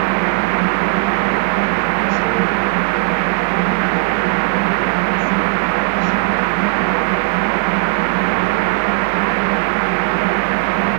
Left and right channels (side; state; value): left; quieter; 27.1 dB